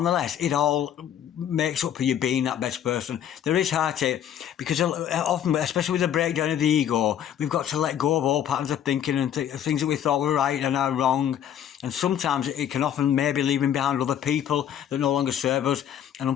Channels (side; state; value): right; quieter; 9.9 dB